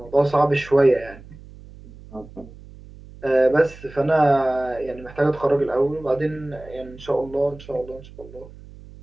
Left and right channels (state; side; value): noise; right; hum, 19 dB below the sound